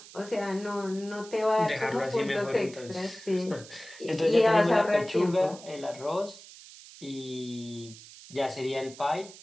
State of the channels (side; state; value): right; noise; hiss, 18 dB below the sound